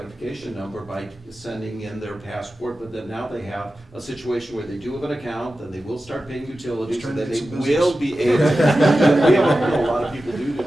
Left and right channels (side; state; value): both; normal; correlation 0.93